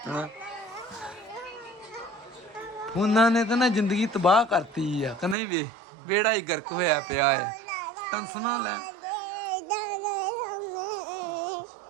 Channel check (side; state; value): left; drops out; at 5.4 s